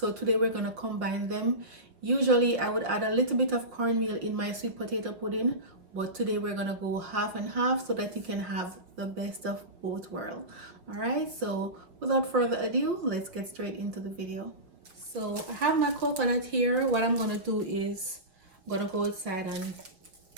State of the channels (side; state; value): left; late; 5.4 ms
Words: today we're going to combine them. Usually I would add a little bit of cornmeal in my sweet potato pudding, but today we're going to go half and half so that you can have the best of both worlds. Alright, so without further ado, let's get straight into the video. So I have my coconut here. What I'm going to do is I'm going to go outside and